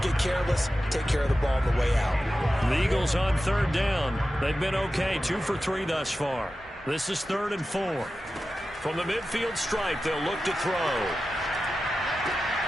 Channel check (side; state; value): both; normal; correlation 0.93